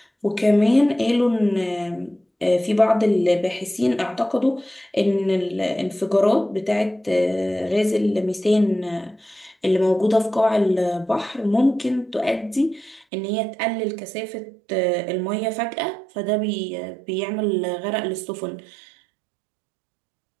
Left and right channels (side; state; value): left; drops out; at 13.1 s